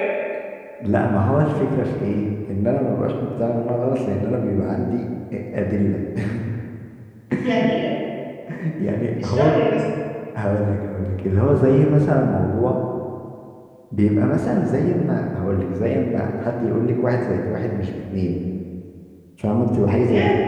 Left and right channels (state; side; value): identical; both; correlation 1.00